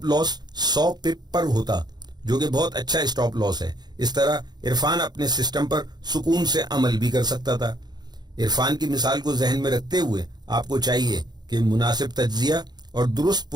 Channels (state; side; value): late; left; 0.20 ms